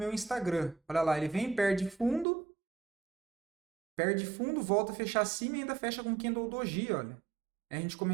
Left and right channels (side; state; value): left; drops out; at 2.2 s